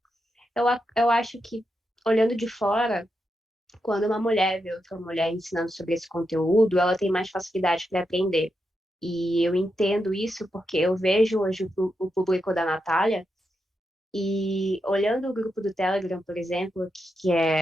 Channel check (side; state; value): both; normal; correlation 0.85